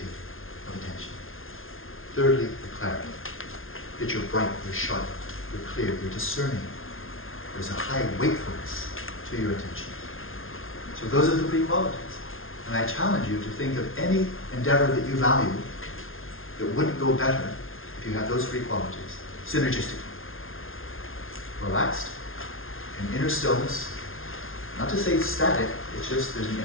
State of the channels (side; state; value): right; late; 0.60 ms